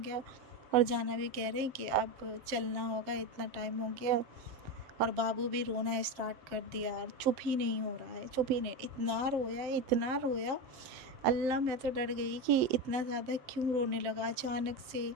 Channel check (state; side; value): late; left; 7.8 ms